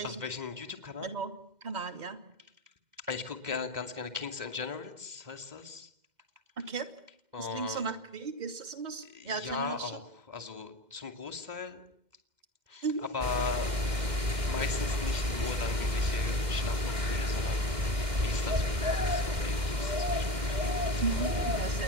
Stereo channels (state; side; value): late; left; 2.1 ms